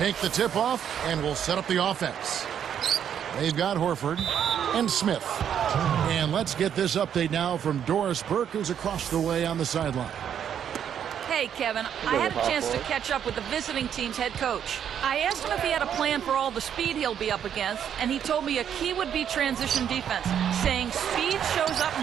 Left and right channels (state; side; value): quieter; left; 8.9 dB